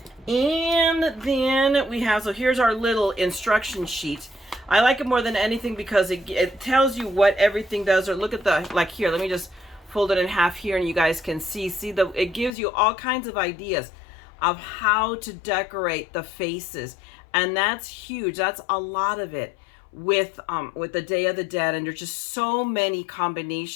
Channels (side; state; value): right; drops out; at 12.5 s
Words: And then we have, so here's our little instruction sheet. I like it more than anything because it tells you what everything does. Or look at like here, let me just fold it in half here and you guys can see it gives you all kinds of ideas of how to decorate the faces, and that's huge. That's a lot of it with the Day of the Dead, and there's just so many